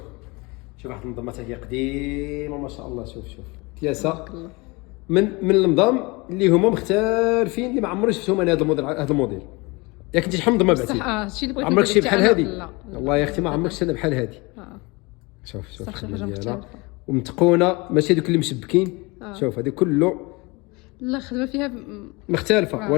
واحد النظامه هي قديمه ما شاء الله. شوف كياسه من النظام اللي هما مختلفين اللي ما عمري شفتهم انا. هذا الموديل ياك انت شحال من نظام بعتي؟ هادشي اللي بغيت عمرك شي بحال هذه؟ لا والله يا اختي ما عمرك شفت بحال هذه. شوف حاجه مختلفه ومتقونه ماشي دوك اللي مشبكين. شوف هذه كله لا خدمه فيها مختلفه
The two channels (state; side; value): quieter; right; 25.9 dB